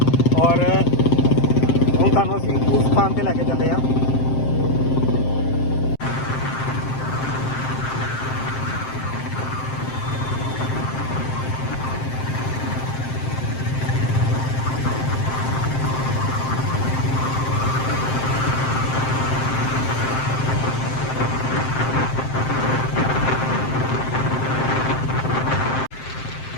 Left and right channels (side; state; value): right; late; 7.6 ms